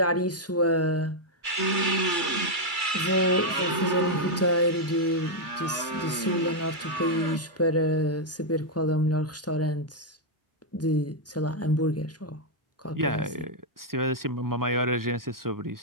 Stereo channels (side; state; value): both; normal; correlation -0.02